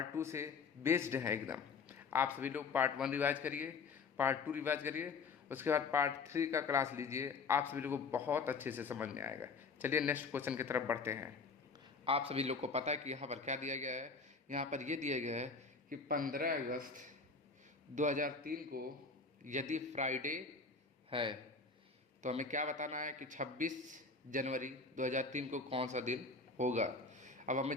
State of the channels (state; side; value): quieter; right; 4.5 dB